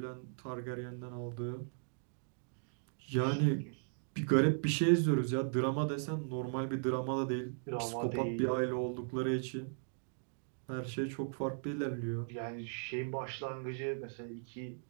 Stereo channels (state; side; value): silent; left; digital silence